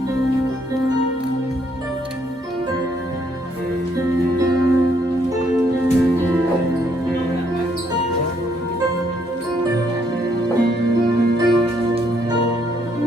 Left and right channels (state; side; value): normal; both; correlation 0.70